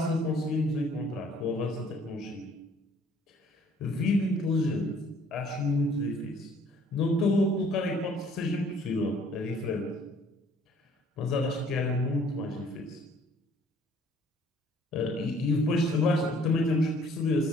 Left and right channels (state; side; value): normal; both; correlation 0.58